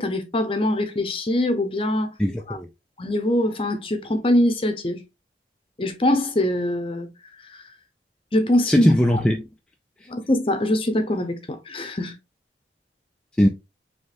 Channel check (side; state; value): both; normal; correlation 0.77